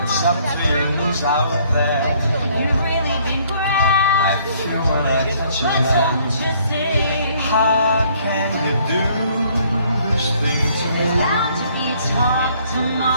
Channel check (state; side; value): inverted; both; correlation -0.63